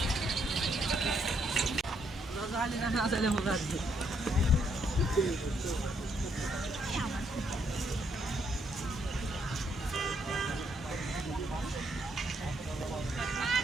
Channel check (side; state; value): both; normal; correlation 0.73